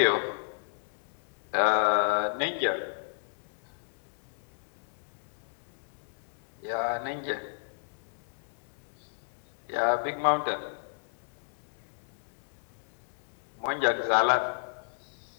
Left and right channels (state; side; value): silent; right; digital silence